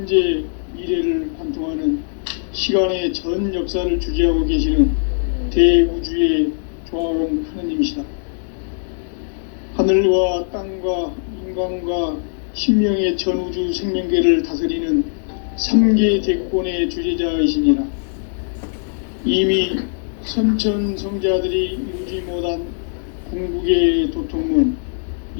미래를 관통하는 시간의 전 역사를 주재하고 계시는 대우주의 조화원 하느님이시다. 하늘과 땅과 인간과 신명의 전우주 생명계를 다스리는 3계 대권의 주재자이시니라. 이미 선천성자들이 이루지 못한 궁극의 도통문,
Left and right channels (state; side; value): silent; right; digital silence